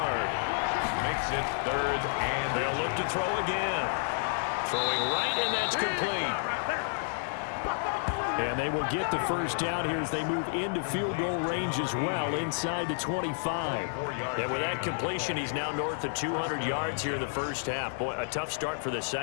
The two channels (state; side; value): silent; right; digital silence